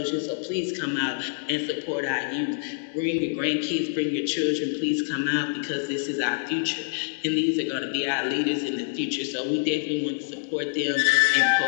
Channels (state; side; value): silent; right; digital silence